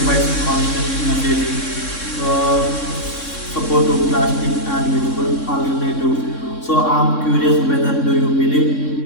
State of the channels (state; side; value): late; right; 3.6 ms